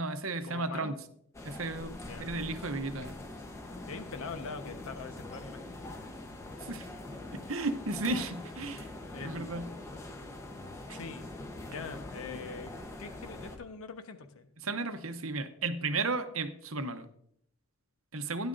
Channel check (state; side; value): normal; both; correlation 0.25